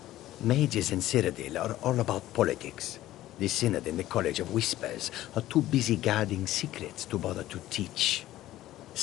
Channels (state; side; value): quieter; right; 14.7 dB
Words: Mages in Cyrodiil are all about politics. The Synod and the College of Whispers are too busy guarding secrets to bother to teach.